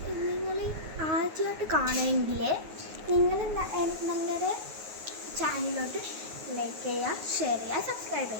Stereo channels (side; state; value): left; late; 9.4 ms